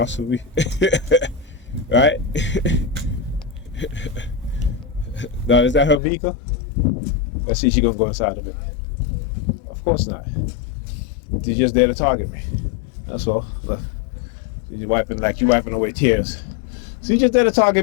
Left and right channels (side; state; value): right; drops out; at 6.0 s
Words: with me. Right? Now, is that her vehicle? Let's see if she's gonna go inside of it. Of course not. She's just there to target me. That's all. Look. She's wiping away tears. She's just there to